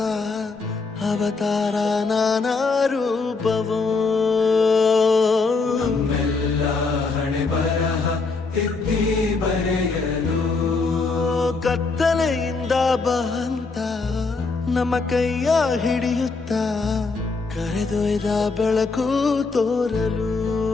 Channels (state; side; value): quieter; right; 4.1 dB